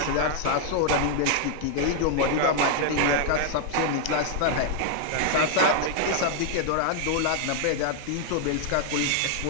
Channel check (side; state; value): both; different; correlation 0.00